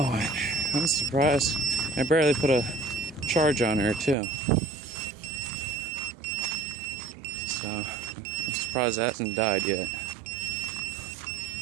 I'm surprised. I barely put a charge on her too. So I'm surprised that hasn't died yet.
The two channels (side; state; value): left; drops out; at 4.2 s